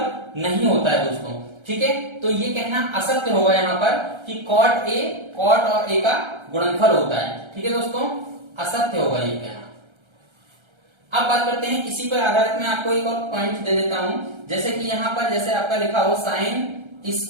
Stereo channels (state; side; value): late; left; 1.3 ms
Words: नहीं होता है दोस्तों। ठीक है, तो ये कहना असत्य होगा यहाँ पर कि कॉट और ए का गुणनफल होता है। ठीक है दोस्तों, असत्य होगा ये कहना। अब बात करते हैं, इसी पर आधारित मैं आपको एक और पॉइंट दे देता हूं। जैसे कि यहाँ पर जैसे आपका लिखा हो साइन